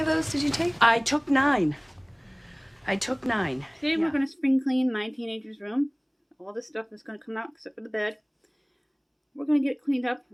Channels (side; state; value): both; identical; correlation 1.00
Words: those did you take? I took 9. Today we're going to spring clean my teenager's room. All this stuff is going to come out except for the bed. We're going to get it cleaned up,